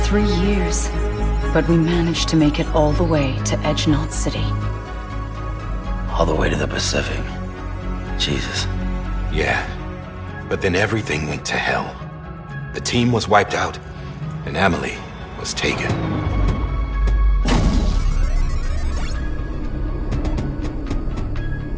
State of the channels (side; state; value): both; identical; correlation 1.00